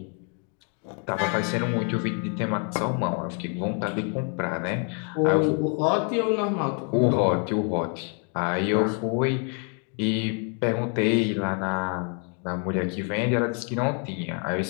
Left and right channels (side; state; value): right; quieter; 39.9 dB